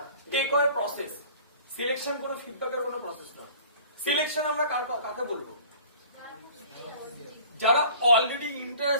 টেক ওয়ে প্রসেস, সিলেকশন কোনো ফিডব্যাকের কোনো প্রসেস না। সিলেকশন আমরা কাকে বলবো? যারা অলরেডি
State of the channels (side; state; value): both; inverted; correlation -0.46